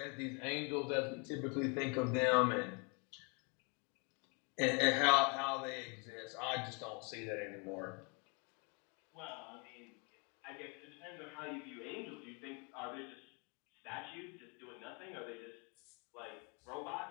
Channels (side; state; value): right; quieter; 33.7 dB